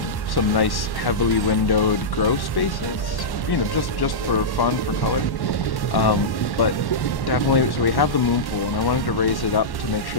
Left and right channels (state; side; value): late; right; 1.1 ms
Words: nice heavily windowed grow spaces, you know, just for fun, for color. But definitely, so we have the moon pool, and I wanted to raise it up to make